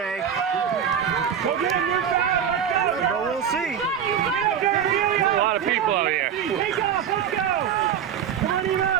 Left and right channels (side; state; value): left; quieter; 8.3 dB